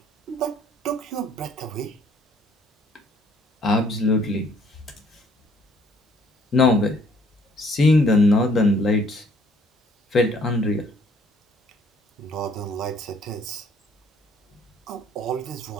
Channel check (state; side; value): normal; both; correlation 0.62